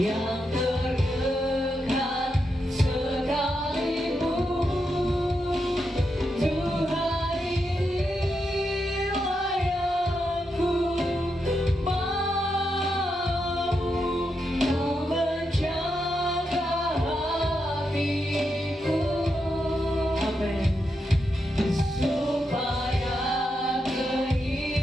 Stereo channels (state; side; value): normal; both; correlation 0.84